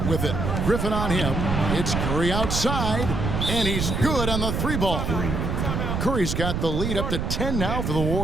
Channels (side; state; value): right; noise; rumble, 1 dB below the sound